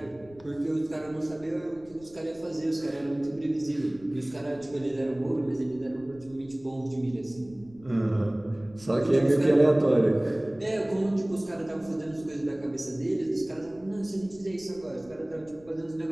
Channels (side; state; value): left; noise; rumble, 24 dB below the sound